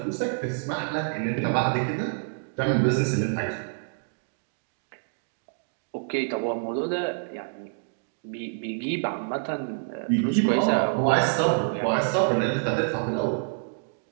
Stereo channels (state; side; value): silent; left; digital silence